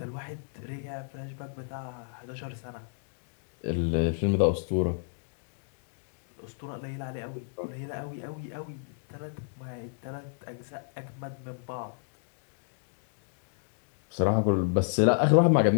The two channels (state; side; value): silent; right; digital silence